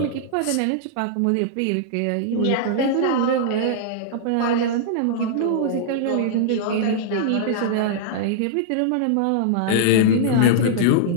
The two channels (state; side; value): different; both; correlation -0.01